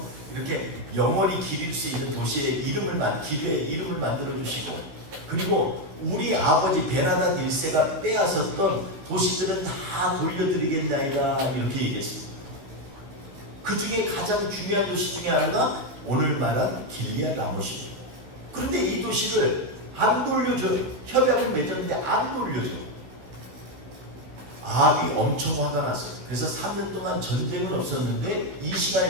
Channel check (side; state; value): left; late; 15 ms